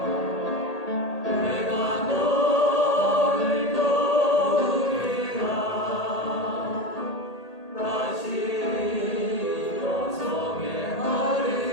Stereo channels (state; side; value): late; right; 1.8 ms